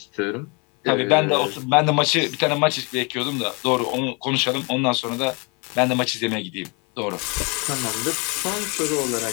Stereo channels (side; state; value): right; quieter; 31.5 dB